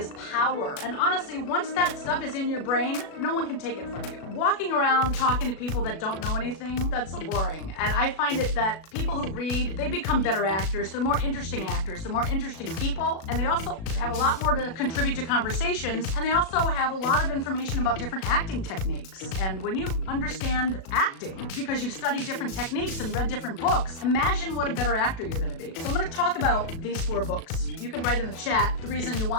power. And honestly, once that stuff is in your brain, no one can take it from you. Walking around talking to people that don't know anything, that's so boring. And I find it that people who read, they become better actors, they're more interesting actors, they're more interesting people, and they also have a lot more to contribute to conversations, and they also have a lot of information about different acting techniques. And when you understand acting, because you've studied different techniques and read different books, imagine what a better actor you're going to be. So I'm going to talk about these 4 books. You can write in the chat the reason you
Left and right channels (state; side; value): late; right; 37 ms